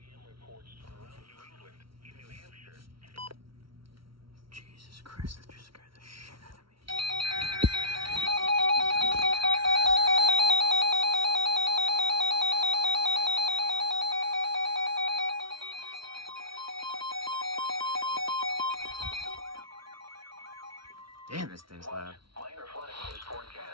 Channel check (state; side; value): late; left; 0.74 ms